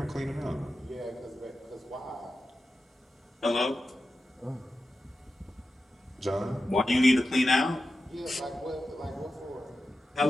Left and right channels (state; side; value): normal; both; correlation 0.92